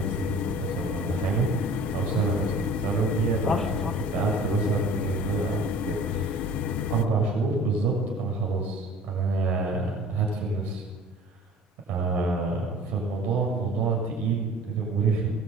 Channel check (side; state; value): both; normal; correlation 0.45